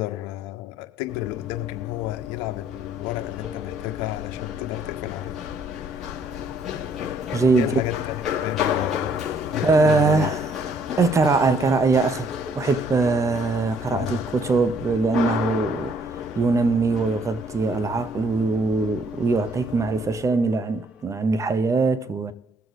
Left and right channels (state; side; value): normal; both; correlation 0.64